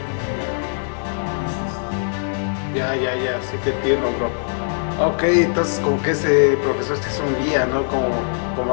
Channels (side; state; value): right; silent; digital silence